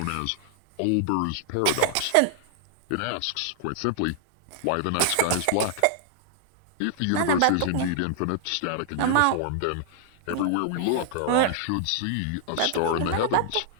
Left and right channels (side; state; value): both; different; correlation -0.01